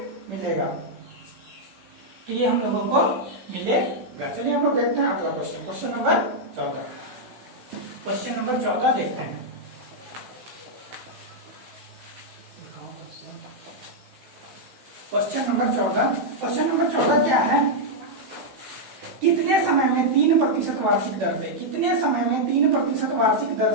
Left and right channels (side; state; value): left; late; 16 ms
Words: मिलेगा। तो ये हम लोगों को मिलेगा। चलिए हम लोग देखते हैं अगला question, question number 14। Question number 14 देखते हैं। क्वेश्चन नंबर 14, क्वेश्चन नंबर 14 क्या है? कितने समय में 3% वार्षिक दर से, कितने समय में 3% वार्षिक दर